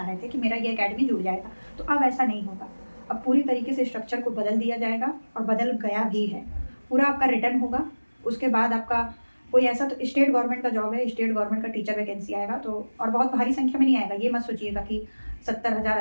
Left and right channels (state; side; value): inverted; both; correlation -1.00